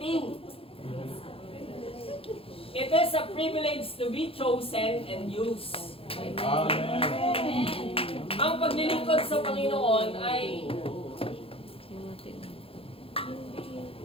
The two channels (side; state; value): right; late; 0.27 ms